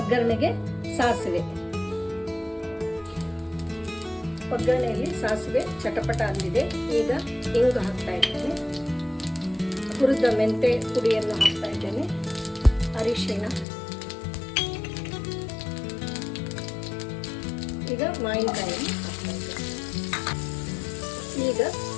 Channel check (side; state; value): right; drops out; at 13.7 s